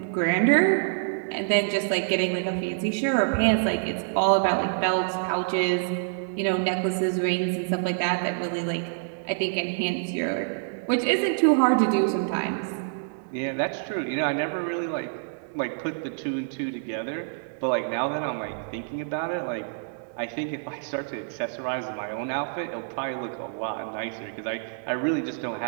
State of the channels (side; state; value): left; silent; digital silence